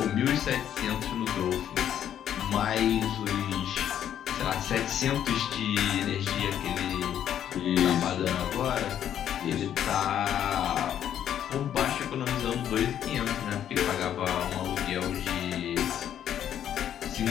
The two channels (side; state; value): right; quieter; 10.1 dB